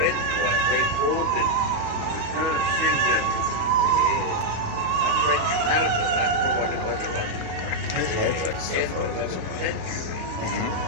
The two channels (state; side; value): late; left; 38 ms